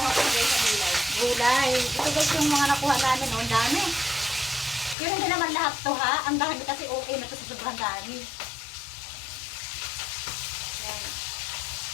ko guys sa gulay. gulay. Ito guys yung mga nakuha namin, oh, ang dami. Yun hindi naman lahat to ha, ang dami kasi okay na to sa sobrang dami. Yan.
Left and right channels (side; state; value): right; drops out; at 5.0 s